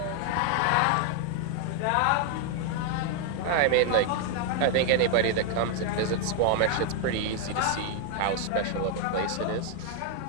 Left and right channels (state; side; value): different; both; correlation 0.00